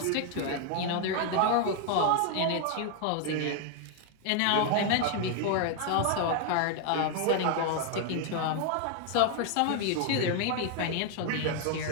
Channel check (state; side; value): different; both; correlation 0.00